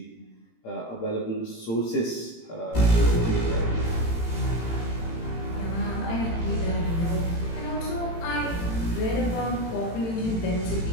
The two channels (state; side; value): late; right; 18 ms